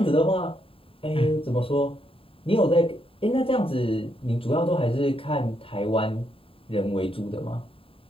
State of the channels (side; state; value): right; late; 0.27 ms